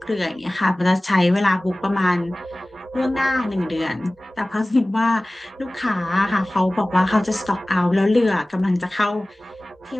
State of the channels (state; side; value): normal; both; correlation 0.98